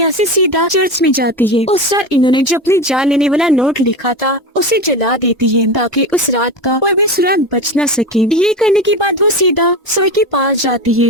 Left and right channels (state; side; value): normal; both; correlation 0.23